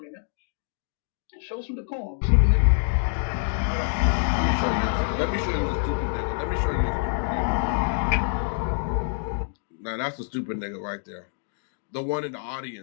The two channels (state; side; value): silent; right; 61 dB below the other